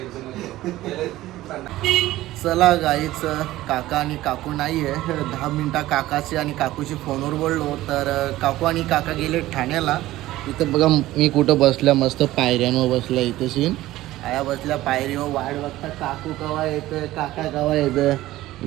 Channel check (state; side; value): quieter; left; 16.1 dB